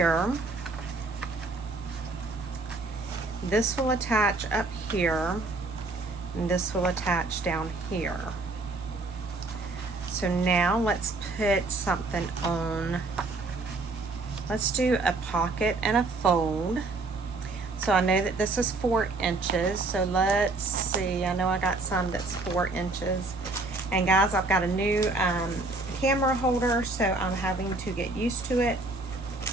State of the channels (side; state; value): left; quieter; 3.3 dB